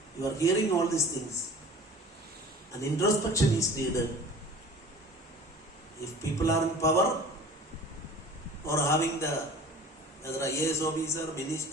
you are hearing all these things. An introspection is needed. If people are in power or having the whether IAS officer,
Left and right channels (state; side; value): normal; both; correlation 0.43